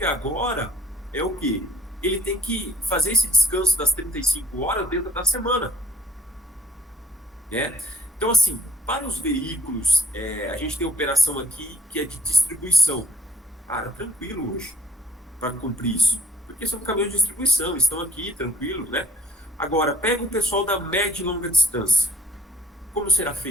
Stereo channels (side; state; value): both; normal; correlation 0.60